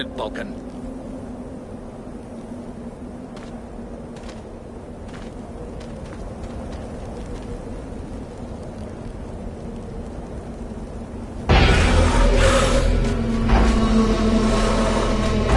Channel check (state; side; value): identical; both; correlation 1.00